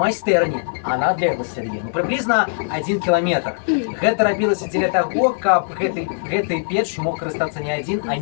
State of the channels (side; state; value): right; silent; digital silence